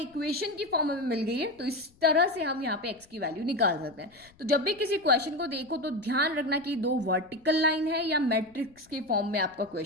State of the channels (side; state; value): left; noise; rumble, 29 dB below the sound